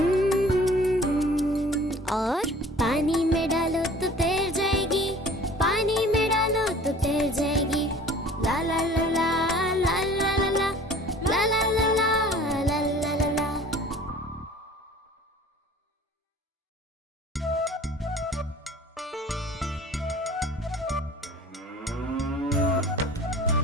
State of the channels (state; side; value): normal; both; correlation 0.47